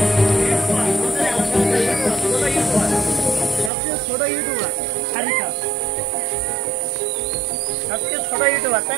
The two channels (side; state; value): left; drops out; at 3.7 s